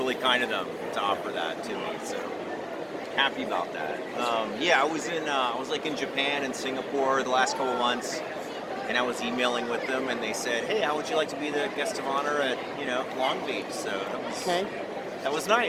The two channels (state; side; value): identical; both; correlation 1.00